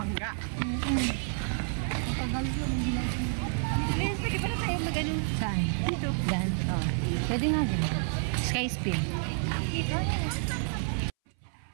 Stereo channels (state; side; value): silent; left; 58 dB below the other